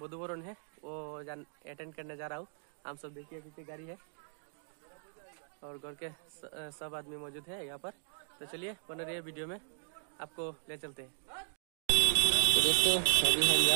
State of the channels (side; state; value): left; silent; digital silence